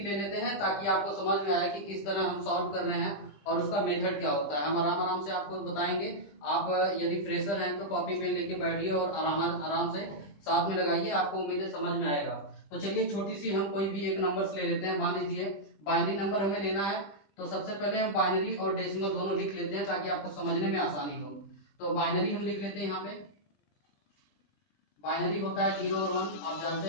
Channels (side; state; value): right; late; 20 ms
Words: ले लेते हैं ताकि आपको समझ में आए कि किस तरह हम सॉल्व कर रहे हैं और उसका मेथड क्या होता है। हम आराम आराम से आपको बताएंगे। आप यदि फ्रेशर हैं तो कॉपी पेन लेके बैठिए और आराम आराम से साथ में लगाइए, आपको उम्मीद है समझ में आएगा। तो चलिए छोटी सी हम कोई भी एक नंबर्स ले लेते हैं। मान लीजिए बाइनरी नंबर हमें लेना है, तो सबसे पहले हम बाइनरी और डेसिमल दोनों लिख लेते हैं ताकि आपको समझने में आसानी हो। तो बाइनरी हम लिख लेते हैं। यहाँ पे बाइनरी होता है 0 और 1, आप जानते